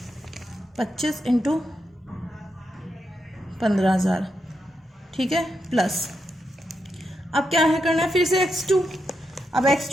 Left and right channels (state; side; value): normal; both; correlation 0.84